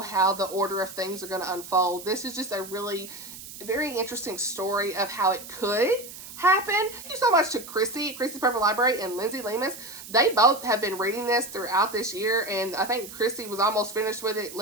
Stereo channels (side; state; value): right; noise; hiss, 14 dB below the sound